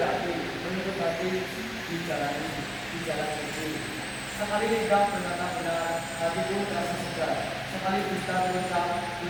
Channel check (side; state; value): both; identical; correlation 1.00